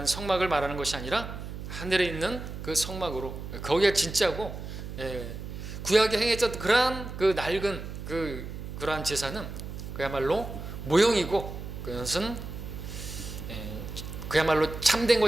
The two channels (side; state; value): right; noise; hum, 9 dB below the sound